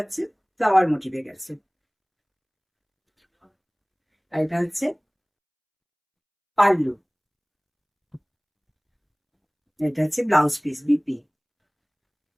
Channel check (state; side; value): identical; both; correlation 1.00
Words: ফ্লাওয়ার মোটিভে গেছে। আর এটা হচ্ছে পাল্লু, এটা হচ্ছে ব্লাউজ পিস বিপি।